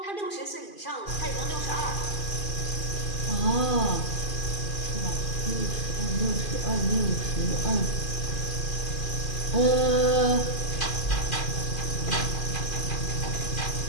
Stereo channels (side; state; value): right; late; 2.4 ms